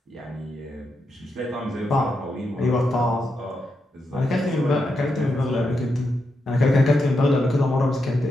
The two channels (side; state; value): both; normal; correlation 0.84